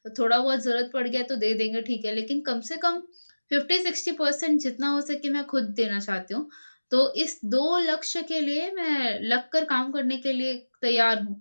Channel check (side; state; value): both; inverted; correlation -1.00